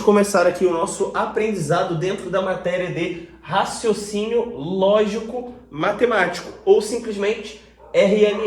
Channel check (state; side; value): identical; both; correlation 1.00